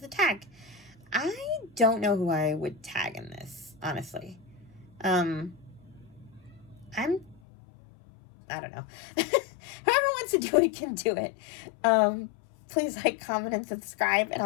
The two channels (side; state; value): right; drops out; at 7.4 s